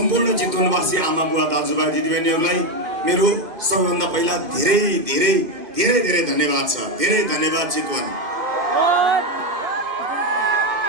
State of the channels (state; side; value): late; left; 2.2 ms